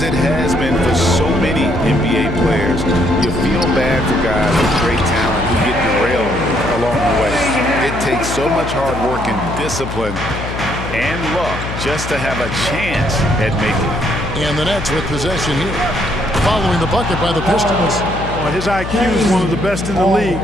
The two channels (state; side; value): noise; left; hum, 7 dB below the sound